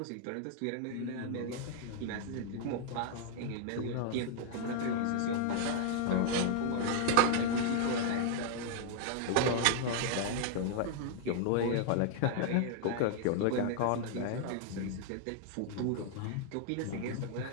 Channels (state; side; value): different; both; correlation 0.00